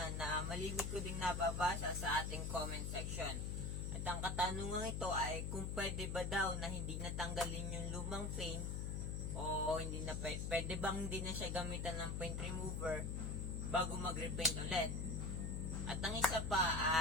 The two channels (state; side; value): noise; left; hum, 2 dB below the sound